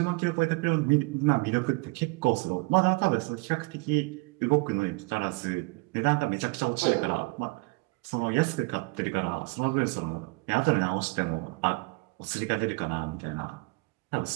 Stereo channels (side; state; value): left; quieter; 27.1 dB